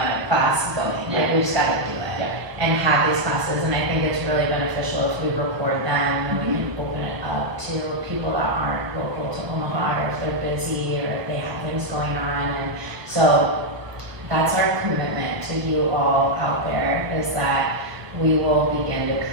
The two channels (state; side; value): late; left; 1.0 ms